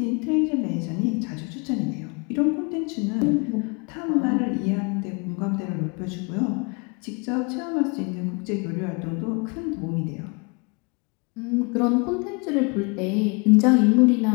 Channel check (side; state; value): right; quieter; 31.7 dB